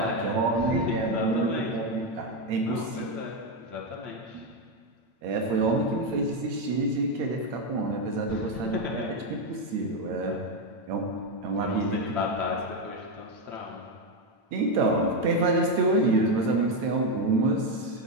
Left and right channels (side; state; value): left; late; 8.8 ms